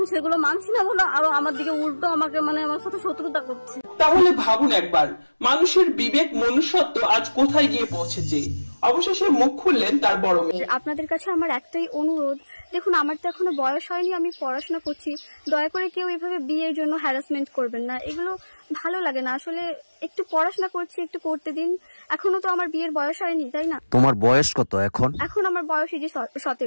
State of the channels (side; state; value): both; inverted; correlation -1.00